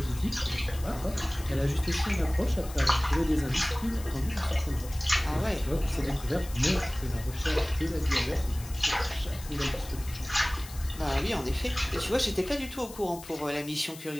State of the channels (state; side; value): noise; left; hiss, 16 dB below the sound